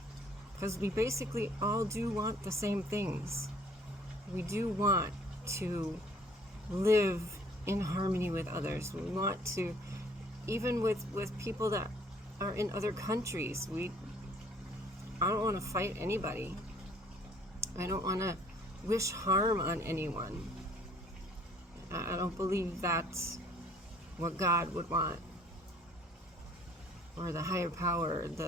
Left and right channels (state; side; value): normal; both; correlation 0.57